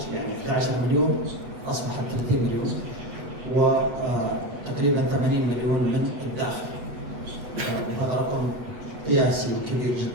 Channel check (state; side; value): late; left; 8.1 ms